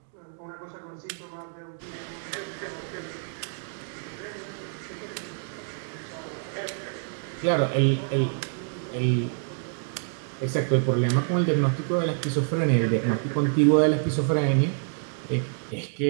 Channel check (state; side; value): silent; left; 60 dB below the other